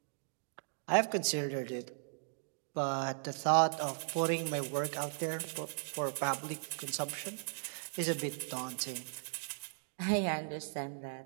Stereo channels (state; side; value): silent; left; digital silence